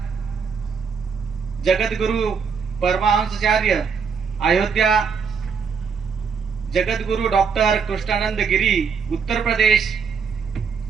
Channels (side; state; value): left; quieter; 6.0 dB